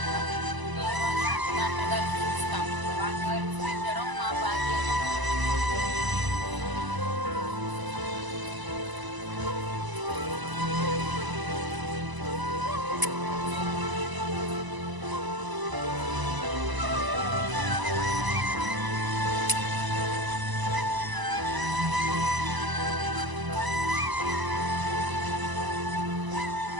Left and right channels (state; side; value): late; left; 1.0 ms